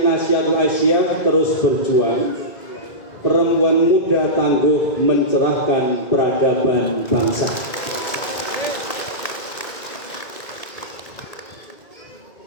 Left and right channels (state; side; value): late; right; 2.2 ms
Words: Aisyah terus berjuang. Perempuan muda tangguh mencerahkan peradaban bangsa.